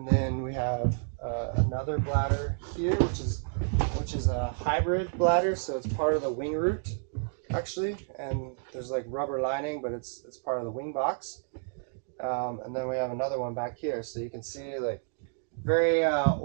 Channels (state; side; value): silent; left; digital silence